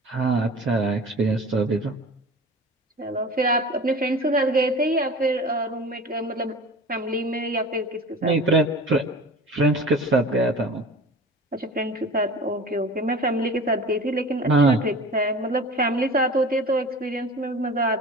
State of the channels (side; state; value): both; normal; correlation 0.38